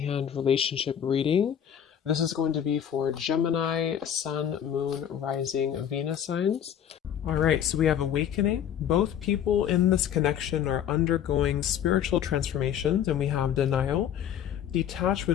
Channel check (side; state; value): right; quieter; 9.5 dB